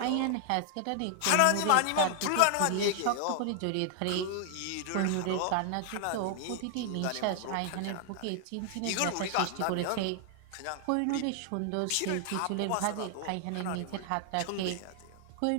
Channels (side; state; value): both; different; correlation 0.00